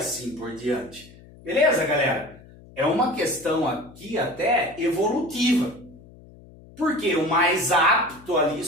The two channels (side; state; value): left; noise; hum, 22 dB below the sound